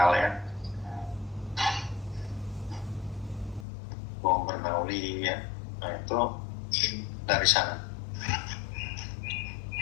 ya. Hukum Bernoulli ya. Nah, itu dari sana.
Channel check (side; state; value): right; drops out; at 3.7 s